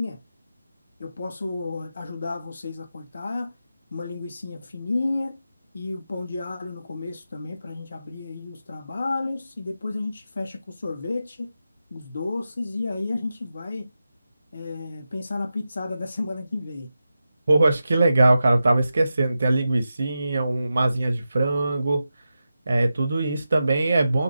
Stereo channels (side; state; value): both; inverted; correlation -0.91